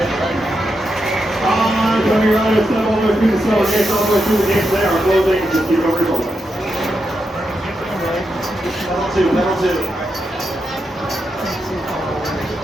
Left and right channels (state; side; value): normal; both; correlation 0.85